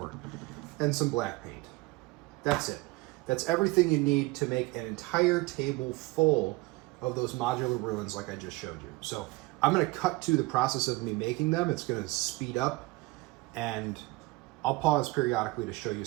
and some black paint. That's it. That's everything you need to make an entire table full of those modular ruins like I just showed you. So I'm going to cut to the process of me making them. It's going to speed up, and I'll pause periodically to show you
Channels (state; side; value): quieter; left; 22.7 dB